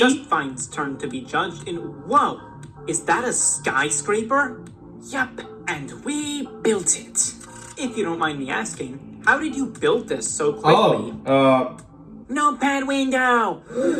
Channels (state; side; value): identical; both; correlation 1.00